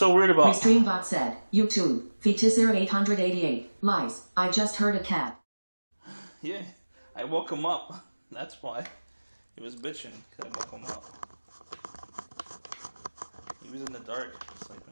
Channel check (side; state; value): both; inverted; correlation -1.00